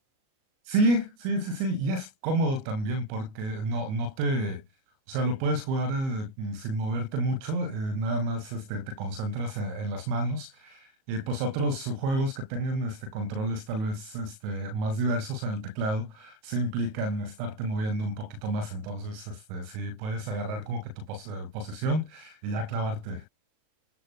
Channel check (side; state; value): left; late; 37 ms